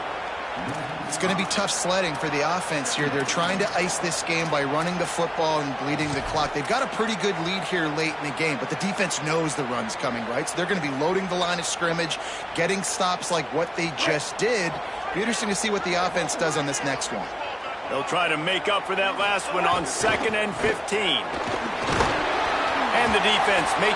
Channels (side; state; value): both; identical; correlation 1.00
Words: It's going to be tough sledding for the offense here. They're trying to ice this game by running the football and bleeding the clock. They've got a pretty good lead here late in the game, but the defense knows the run's coming, right? So they're going to be loading the line of scrimmage, getting stops like what they just did. Be interesting to see what the offense does on this next one. They'll try to make up for that last one on 2nd and 15. And the defense